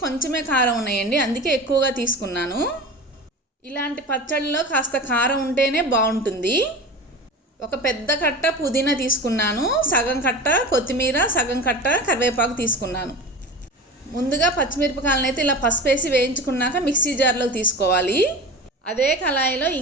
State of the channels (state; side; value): normal; both; correlation 0.31